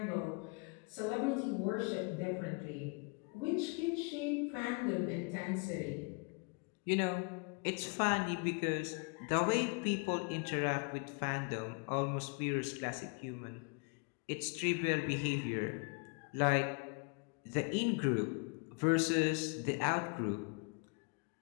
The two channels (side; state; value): right; quieter; 33.4 dB